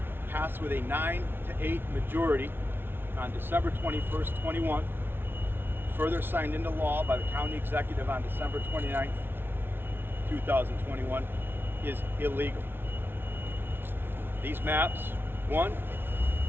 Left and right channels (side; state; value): left; late; 0.11 ms